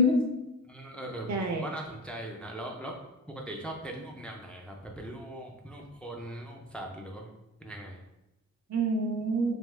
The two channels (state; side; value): normal; both; correlation 0.31